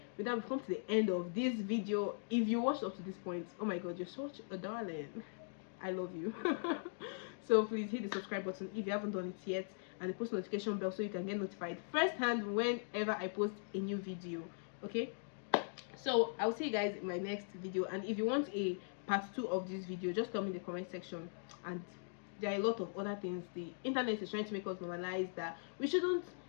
with that, we've come to the end of this video. If you watched up to this point, oh my god, you're such a darling. I love you. So please hit the subscribe button if you haven't done it yet, and the post notification bell so you can get notified first hand whenever I post a new video. Okay, so I'll see you guys in my next video, and if you want a part 2 of this video, just tell me in the comment section. And there are a lot of other things the internet is trying to make us normalize that we shouldn't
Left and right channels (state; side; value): silent; right; digital silence